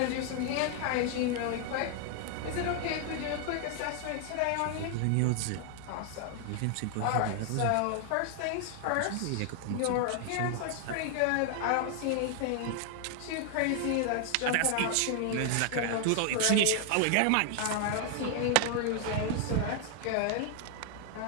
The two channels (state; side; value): different; both; correlation 0.00